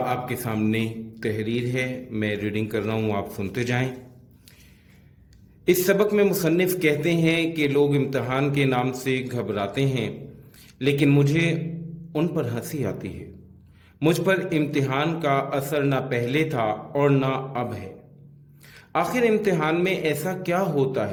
आपके सामने तहरीर है, मैं रीडिंग कर रहा हूँ, आप सुनते जाएं। इस सबक में मुसन्निफ कहते हैं कि लोग इम्तिहान के नाम से घबराते हैं, लेकिन मुझे उन पर हंसी आती है। मुझ पर इम्तिहान का असर ना पहले था और ना अब है। आखिर इम्तिहान में ऐसा क्या होता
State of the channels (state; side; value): identical; both; correlation 1.00